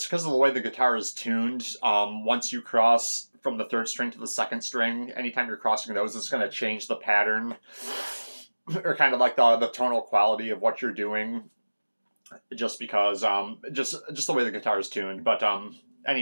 because of the way the guitar is tuned, once you cross from the third string to the second string, anytime you're crossing those, it's going to change the pattern or kind of like the tonal quality of what you're doing, just because just the way the guitar is tuned. But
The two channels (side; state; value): both; inverted; correlation -1.00